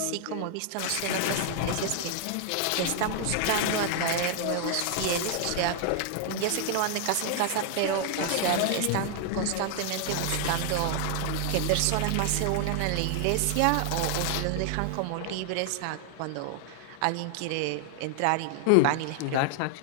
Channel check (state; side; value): different; both; correlation 0.00